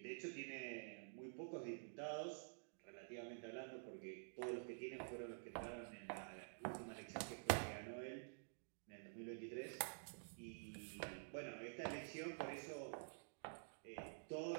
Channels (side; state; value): left; silent; digital silence